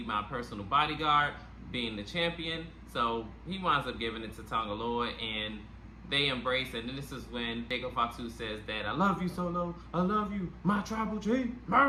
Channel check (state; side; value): identical; both; correlation 1.00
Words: my personal bodyguard being the champion. So he winds up giving it to Tonga Loa, and they embrace it. And this is when Jacob Fatu says that, I love you, Solo, I love you, my tribal chief.